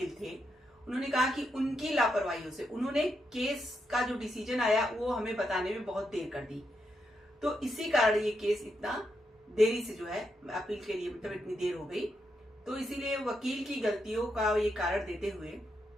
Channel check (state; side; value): normal; both; correlation 0.82